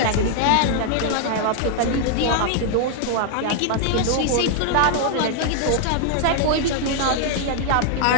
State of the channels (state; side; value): different; both; correlation 0.00